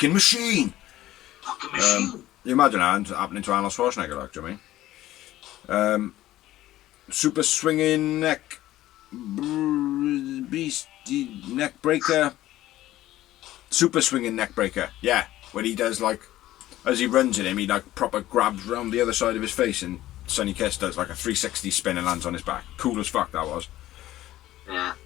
machine. Fucking machine. You imagine that happening to Arnold Schwarzenegger, like, do you know what I mean? Super swinging neck breaker. Super swinging neck breaker. Yeah, when he does like, as he runs at him, he like proper grabs round the other side of his face, and Sonny Kiss does like a 360 spin and lands on his back. Cool as fuck that was. Yeah.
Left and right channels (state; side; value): quieter; right; 14.9 dB